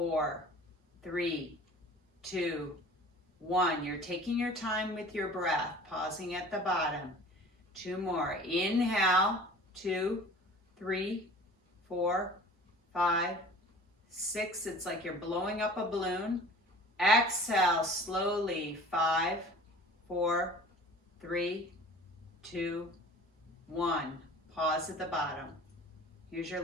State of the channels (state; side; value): normal; both; correlation 0.44